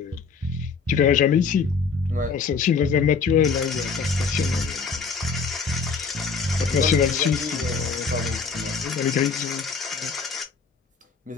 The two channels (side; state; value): right; quieter; 5.2 dB